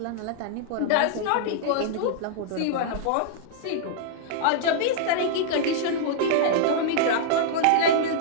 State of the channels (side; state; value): both; different; correlation -0.02